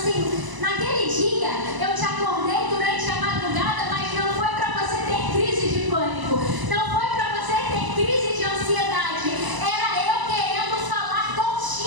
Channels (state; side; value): late; left; 1.0 ms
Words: naquele dia eu te acordei durante a madrugada, mas não foi para você ter crise de pânico, não foi para você ter crise de ansiedade, era eu querendo falar